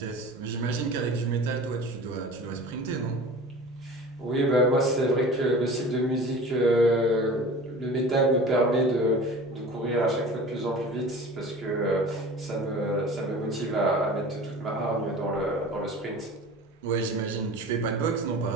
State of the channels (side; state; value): both; normal; correlation 0.39